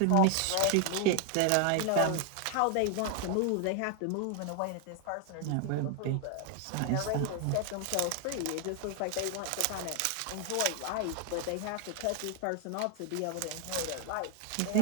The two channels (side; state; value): both; different; correlation 0.00